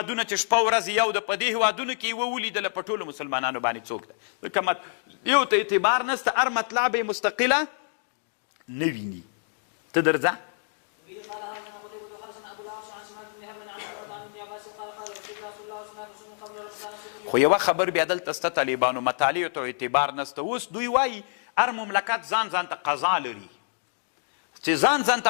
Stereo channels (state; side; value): silent; right; 60 dB below the other